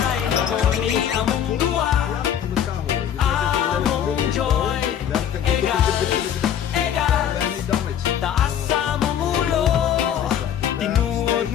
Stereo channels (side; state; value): right; quieter; 9.5 dB